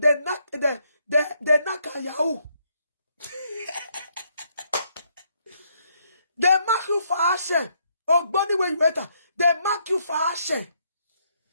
naka yahoo. They mark you for action. Oh, body when you enter. They mark you for action.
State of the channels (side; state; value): both; inverted; correlation -0.73